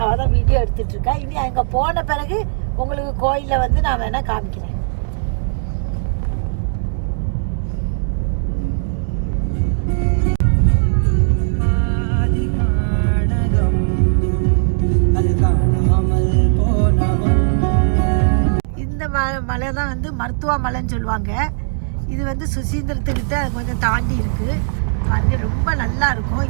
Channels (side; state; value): left; silent; digital silence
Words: அவள் தான் வீடியோ எடுத்துகிட்ருக்கா. இனி அங்கே போன பிறகு உங்களுக்கு கோயிலில் வந்து நான் வேணால் காமிக்கிறேன். இந்த மலை தான் வந்து மருத்துவ மலைன்னு சொல்லுவாங்க. இது வந்து சுசீந்திரத்துக்கிட்ட கொஞ்சம் தாண்டி இருக்குது. அது ரொம்ப நல்லா இருக்கும்.